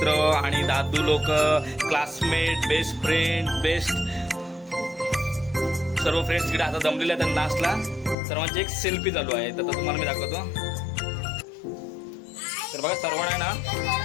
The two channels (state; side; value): drops out; right; at 8.2 s